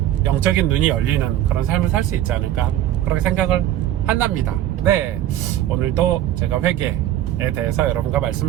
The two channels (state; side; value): quieter; left; 12.5 dB